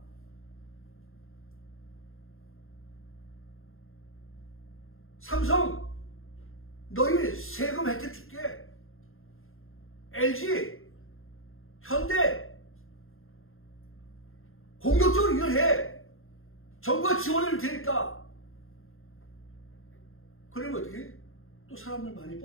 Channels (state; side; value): late; right; 0.61 ms